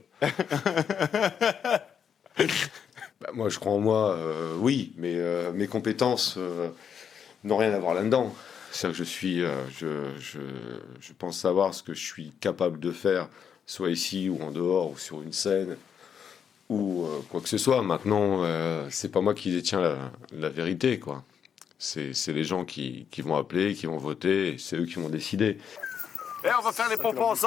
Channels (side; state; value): right; quieter; 7.6 dB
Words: Bah, moi, je crois en moi, oui, mais mes compétences n'ont rien à voir là-dedans. C'est-à-dire que je pense savoir ce que je suis capable de faire, soit ici ou en dehors, ou sur une scène, ou quoi que ce soit. Maintenant, c'est pas moi qui détiens la vérité, quoi. C'est les gens qui vont appeler, qui vont voter, et c'est eux qui vont décider. Eh, on va faire les pompons